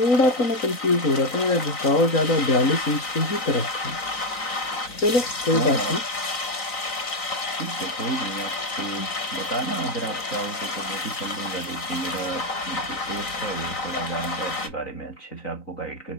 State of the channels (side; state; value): right; late; 3.9 ms